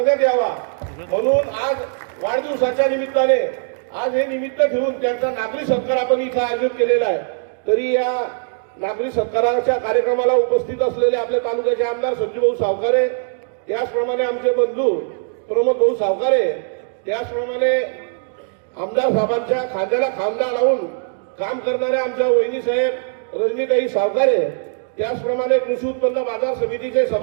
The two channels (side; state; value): left; silent; digital silence